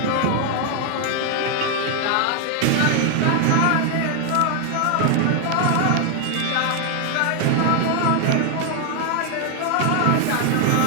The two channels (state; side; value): different; both; correlation 0.00